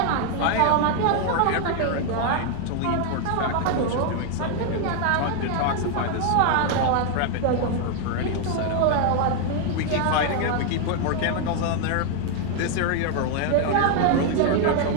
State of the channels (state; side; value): different; both; correlation 0.00